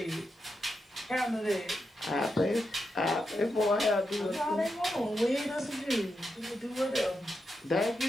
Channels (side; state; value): both; normal; correlation 0.86